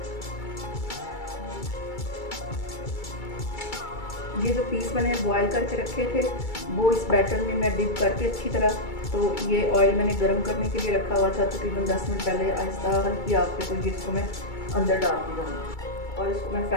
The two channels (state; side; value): late; right; 2.3 ms